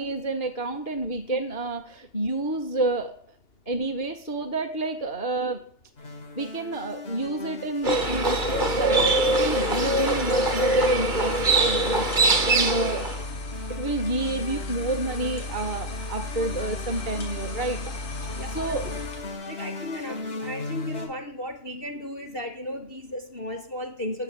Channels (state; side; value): late; right; 2.9 ms